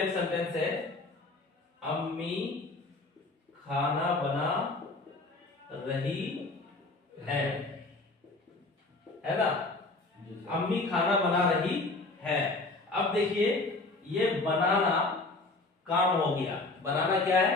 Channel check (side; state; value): right; quieter; 3.2 dB